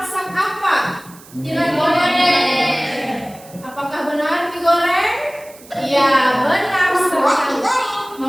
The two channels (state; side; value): noise; right; hiss, 22 dB below the sound